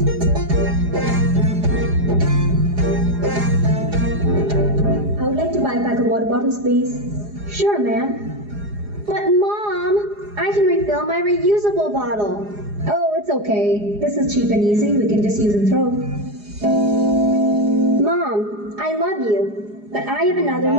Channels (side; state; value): left; late; 4.9 ms